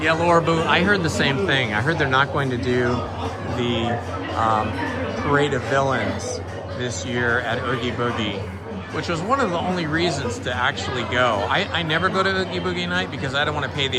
Yeah, Laura Boo, I heard the same thing. I heard they're not going to do the Parade of Villains this year at Oogie Boogie, which was one of the only reasons to actually go. I never go to Oogie Boogie night because I don't want to pay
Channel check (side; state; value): both; identical; correlation 1.00